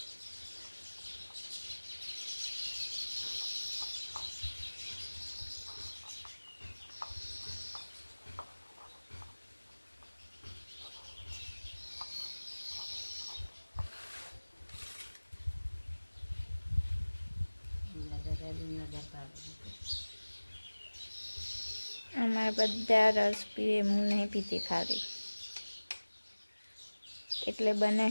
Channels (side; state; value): both; inverted; correlation -1.00